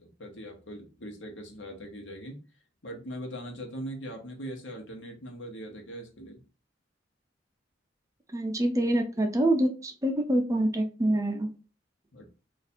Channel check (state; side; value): normal; both; correlation 0.84